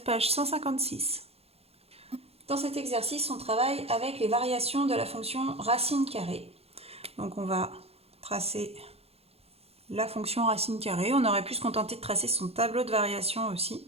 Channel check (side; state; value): left; late; 0.29 ms